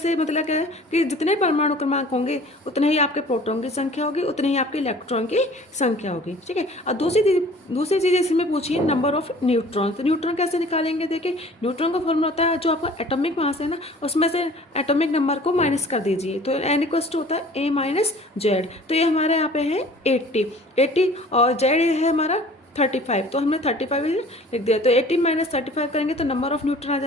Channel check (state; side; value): normal; both; correlation 0.48